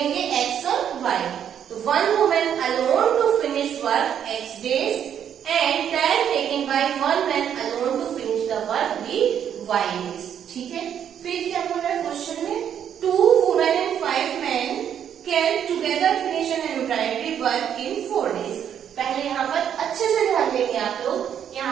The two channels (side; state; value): left; quieter; 9.1 dB